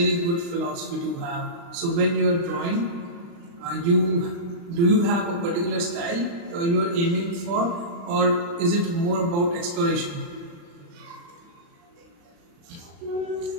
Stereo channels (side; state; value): left; late; 35 ms